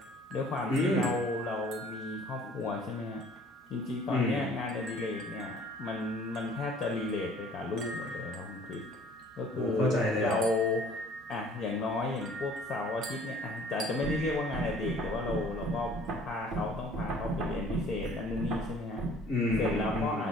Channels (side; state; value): both; normal; correlation 0.53